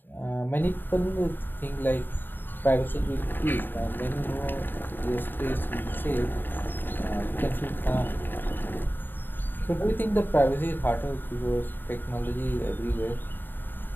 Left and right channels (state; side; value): late; right; 0.094 ms